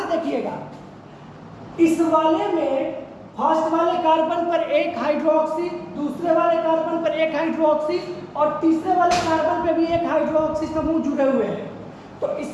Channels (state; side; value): identical; both; correlation 1.00